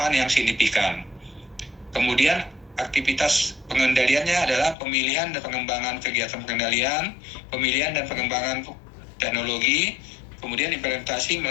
yang signifikan. Kemudian aktivitas pengendaliannya adalah pemilihan dan pengembangan kegiatan pengendalian, pemilihan dan pengembangan teknologi, kemudian implementasi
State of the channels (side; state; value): right; drops out; at 4.8 s